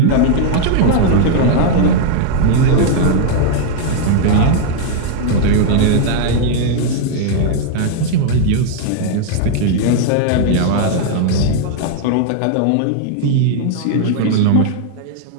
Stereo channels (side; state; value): both; different; correlation 0.00